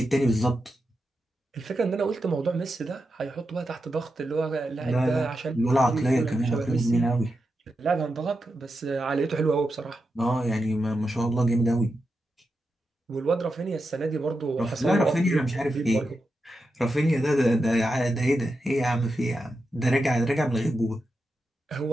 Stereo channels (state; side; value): normal; both; correlation 0.88